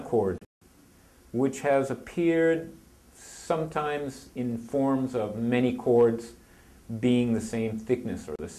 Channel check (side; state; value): both; identical; correlation 1.00